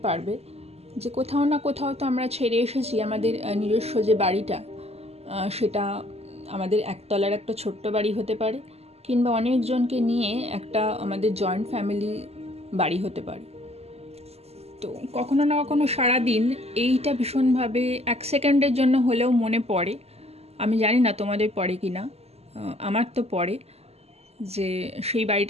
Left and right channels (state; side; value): late; left; 0.30 ms